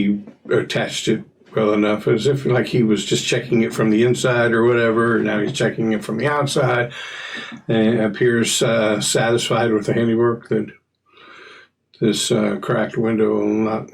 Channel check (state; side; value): identical; both; correlation 1.00